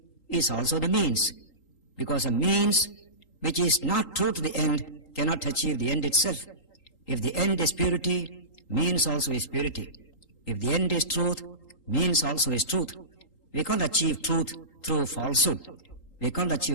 is also the means, because a means which is not true to the end cannot achieve the end itself. If the end is purity, means also is purity. If the end is truth, means also is truth. We can't achieve truth through falsehood. We can't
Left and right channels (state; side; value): late; right; 3.8 ms